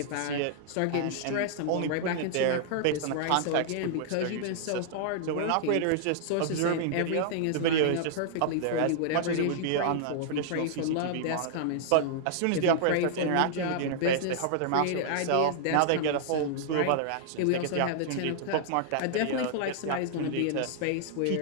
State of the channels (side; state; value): both; different; correlation -0.01